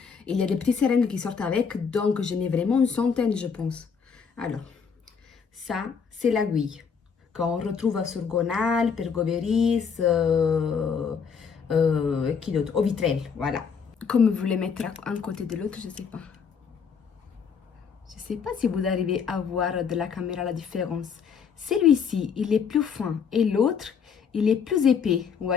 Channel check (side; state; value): right; quieter; 6.3 dB